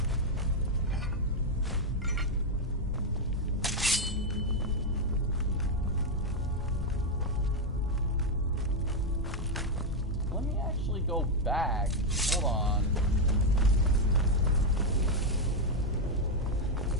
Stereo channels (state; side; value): normal; both; correlation 0.02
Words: Let me actually go back. Hold on.